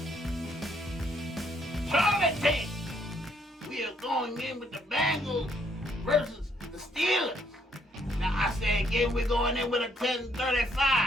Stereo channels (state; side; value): normal; both; correlation 0.69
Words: Charlie team, we are going in with the Bengals versus the Steelers. Now I say again, we're going in with a